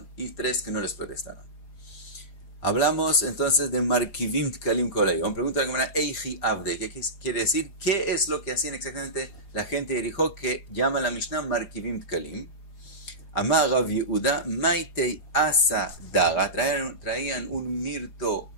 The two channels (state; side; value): late; right; 4.9 ms